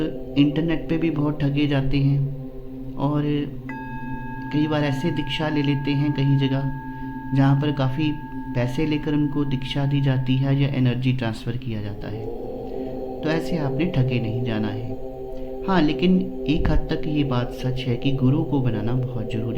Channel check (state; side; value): identical; both; correlation 1.00